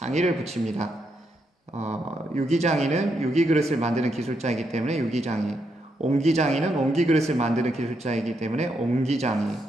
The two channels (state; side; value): normal; both; correlation 0.80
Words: 붙입니다. 유기장이는 유기그릇을 만드는 기술자이기 때문에 유기장이, 옹기장이는 옹기그릇을 만드는 기술자이기 때문에 옹기장이.